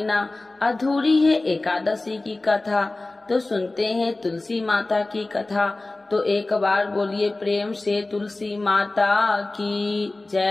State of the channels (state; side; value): quieter; right; 3.0 dB